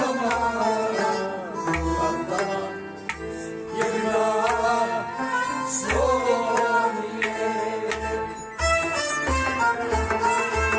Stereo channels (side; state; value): both; identical; correlation 1.00